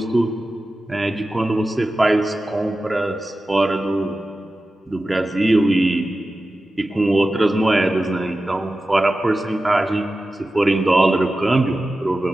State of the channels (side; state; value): both; normal; correlation 0.94